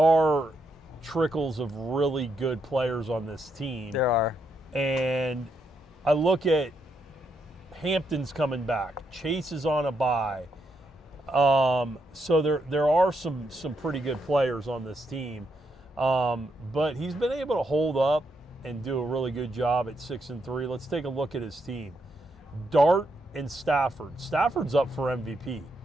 trickles of really good players on this team. There are. And I look at Hampton's coming back. Chase is on a bye. So there are some pretty good players on this team. But he's been able to hold up and do a really good job at 6-3. Let's take a look at his team. Dart and Stafford. Stafford's up for MVP.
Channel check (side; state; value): both; normal; correlation 0.79